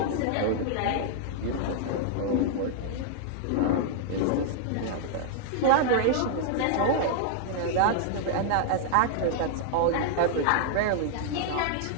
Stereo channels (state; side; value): different; both; correlation -0.01